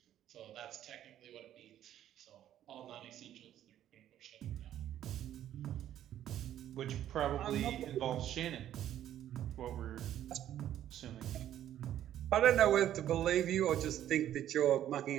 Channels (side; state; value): left; quieter; 11.6 dB